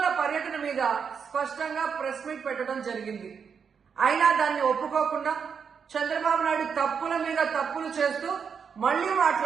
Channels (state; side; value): quieter; left; 6.5 dB